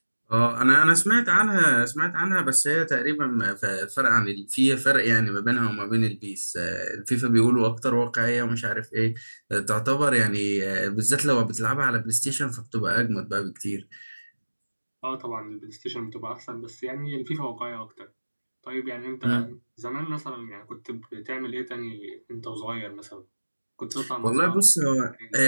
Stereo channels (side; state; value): both; inverted; correlation -1.00